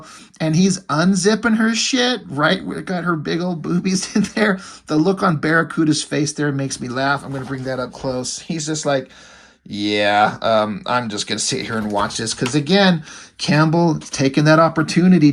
and he's unzipping her shit, right? We got her big old boobies in there. The look on Barracuda's face there makes me laugh. I'm going to bring that up close. He's just like, yeah, I'm just going to sit here and watch this. Because again, Campbell taking that opportunity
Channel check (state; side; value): identical; both; correlation 1.00